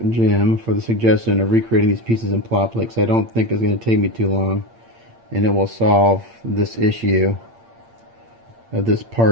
Jim, for the suggestion of recreating these pieces in plot plate, because I don't think it's going to take me too long, and it will solve this issue of this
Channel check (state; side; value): late; left; 8.7 ms